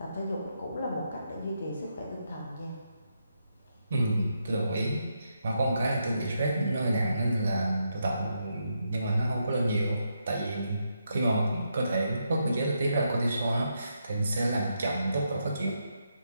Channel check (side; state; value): both; inverted; correlation -0.81